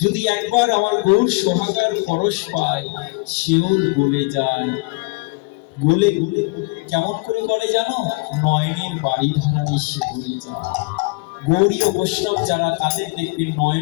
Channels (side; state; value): right; quieter; 26.9 dB